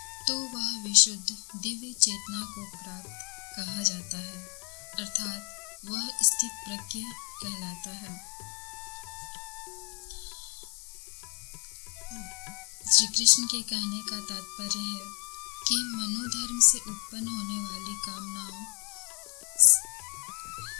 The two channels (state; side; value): quieter; right; 34.6 dB